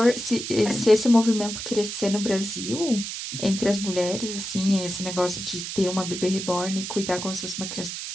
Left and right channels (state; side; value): noise; right; hiss, 6 dB below the sound